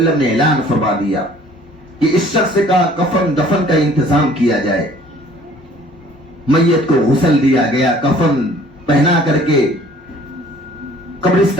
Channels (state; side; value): normal; both; correlation 0.53